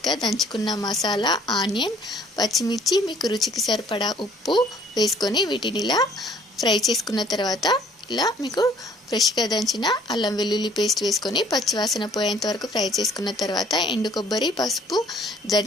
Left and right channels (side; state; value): both; normal; correlation 0.57